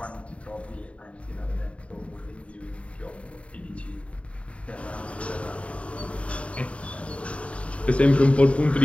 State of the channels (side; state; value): right; late; 0.063 ms